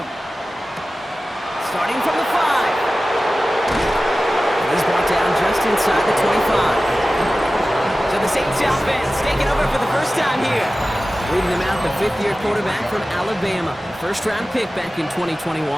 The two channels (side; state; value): both; normal; correlation 0.96